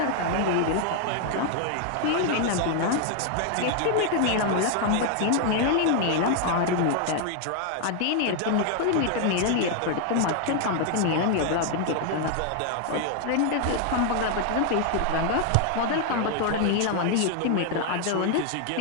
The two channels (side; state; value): both; different; correlation 0.00